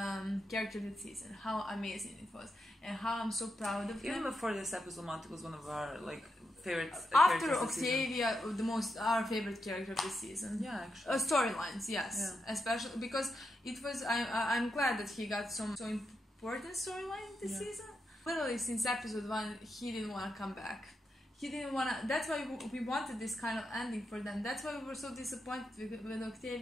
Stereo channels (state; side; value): normal; both; correlation 0.85